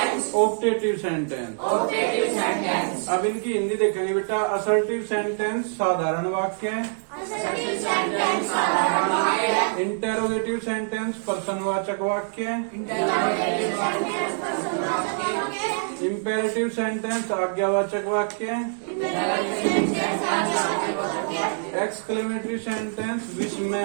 Optative sentence. अब इनकी हिंदी देखेंगे बेटा। असर्टिव सेंटेंस साधारण वाक्य। इंटेरोगेटिव सेंटेंस प्रश्नवाचक वाक्य। इम्पेरेटिव सेंटेंस आज्ञावाचक वाक्य। एक्सक्लेमेटरी सेंटेंस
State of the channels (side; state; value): left; silent; digital silence